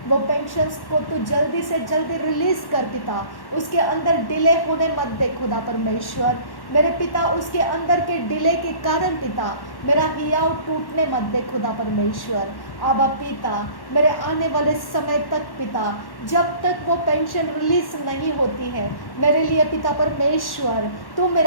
वो पेंशन्स को तू जल्दी से जल्दी रिलीज़ कर पिता, उसके अंदर डिले होने मत दे खुदा परमेश्वर। मेरे पिता उसके अंदर के डिले के कारण पिता मेरा हियाव टूटने मत दे खुदा परमेश्वर। आबा पिता मेरे आने वाले समय तक पिता, जब तक वो पेंशन रिलीज नहीं होती है, मेरे लिए पिता परमेश्वर तू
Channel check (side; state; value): right; late; 1.1 ms